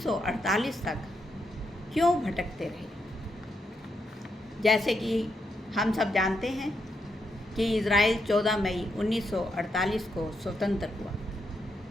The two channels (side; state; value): both; normal; correlation 0.81